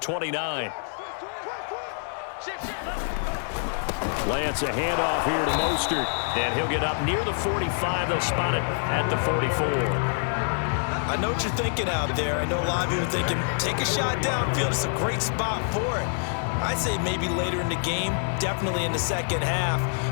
Lance a handoff here to Mostert, and he'll get up near the 45. They'll spot it at the 44. I know what you're thinking out there. I know a lot of you are thinking, take a shot downfield. It's a great spot for it. I'd say maybe later in the game, definitely in the second half.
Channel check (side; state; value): right; silent; digital silence